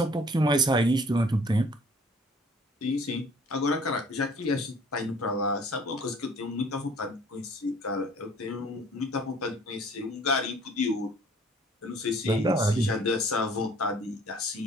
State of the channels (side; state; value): both; normal; correlation 0.54